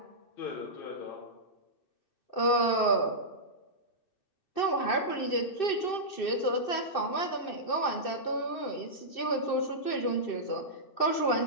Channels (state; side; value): late; right; 2.6 ms